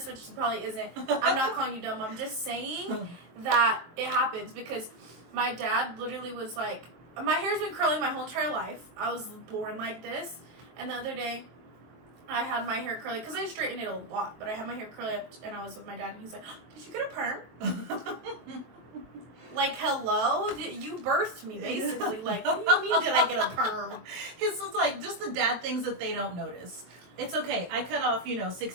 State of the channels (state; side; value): late; left; 23 ms